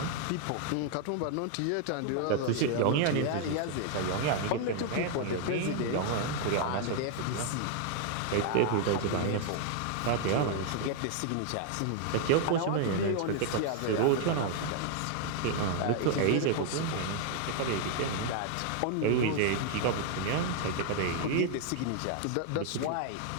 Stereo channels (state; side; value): different; both; correlation 0.00